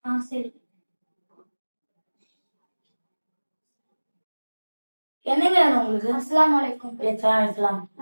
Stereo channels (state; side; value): inverted; both; correlation -1.00